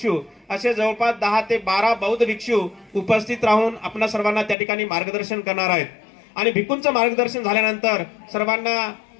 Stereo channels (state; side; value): drops out; right; at 4.5 s